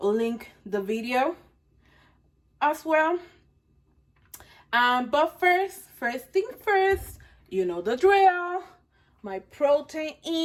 the video as well. But first thing first, you know the drill. My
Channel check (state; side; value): identical; both; correlation 1.00